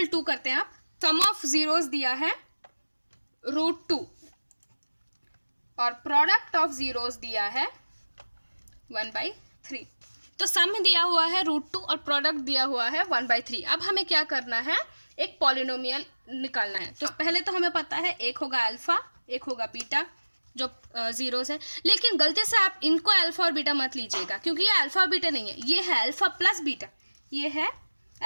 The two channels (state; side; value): inverted; both; correlation -1.00